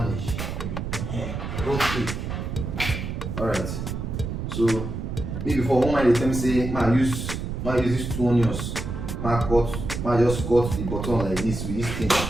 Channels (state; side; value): noise; right; rumble, 5 dB below the sound